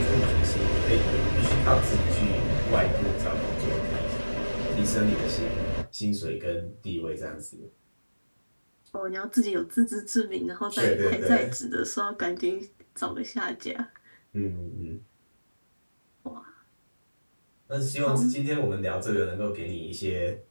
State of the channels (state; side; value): inverted; both; correlation -1.00